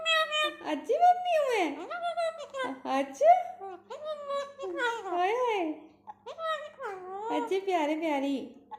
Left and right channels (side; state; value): both; identical; correlation 1.00